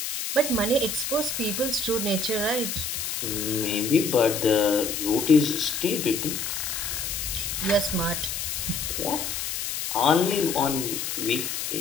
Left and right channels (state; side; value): noise; left; hiss, 3 dB below the sound